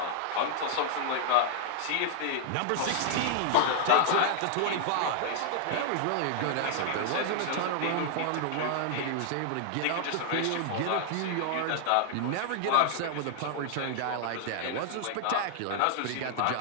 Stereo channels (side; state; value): both; different; correlation 0.00